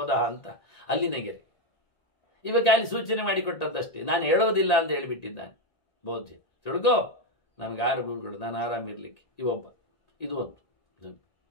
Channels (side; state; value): right; late; 1.8 ms